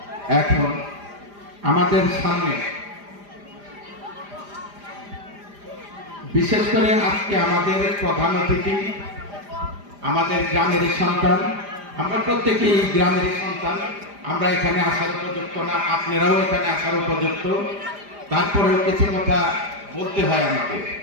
এখন আমাদের সামনে বিশেষ করে আজকে আমাদের প্রধান অতিথি আমাদের গ্রামের সন্তান। আমরা প্রত্যেকেই গ্রামের সন্তান, আমরা এখানে আসার উপযুক্ত না, আপনারাও এখানে আসার উপযুক্ত, তারপরেও কিছু কথা বলতে হয় আমাকে।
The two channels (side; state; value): left; late; 5.0 ms